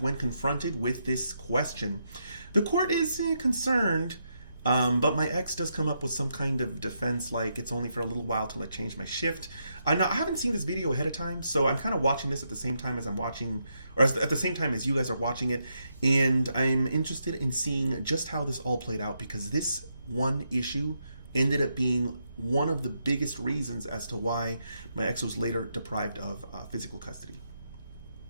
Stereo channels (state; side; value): inverted; both; correlation -0.80